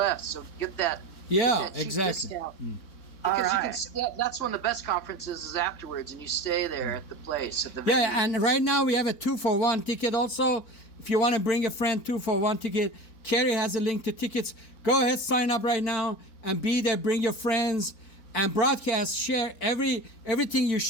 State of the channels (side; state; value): right; late; 4.5 ms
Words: So get that. Yeah, get that cheap exactly. Discount. Because that's when the best conferences is afterwards, and you stay there at the place. At the venue. Yeah, and right now we have a 2-for-1 ticket also. If you want to bring a friend, 2-for-1 ticket. Carrie has a link to tickets. Go ahead, sign up right now and be there. Bring your friends and broadcast. Share everything you